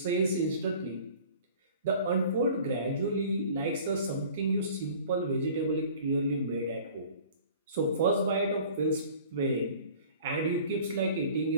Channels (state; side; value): inverted; both; correlation -0.47